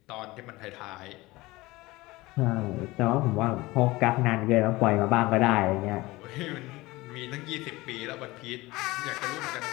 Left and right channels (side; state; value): right; quieter; 20.4 dB